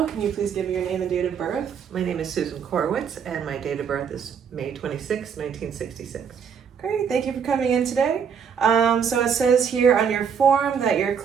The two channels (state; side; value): quieter; left; 7.1 dB